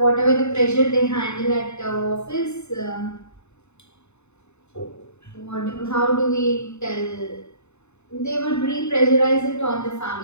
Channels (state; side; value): late; right; 0.82 ms